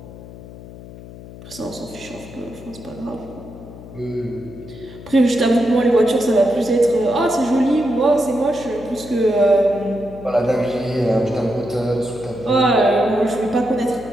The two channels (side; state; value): left; noise; hum, 16 dB below the sound